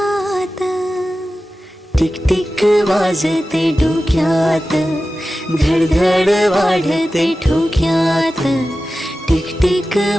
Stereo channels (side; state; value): both; normal; correlation 0.94